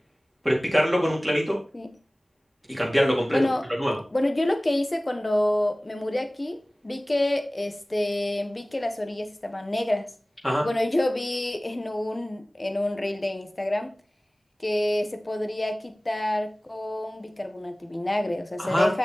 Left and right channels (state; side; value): normal; both; correlation 0.98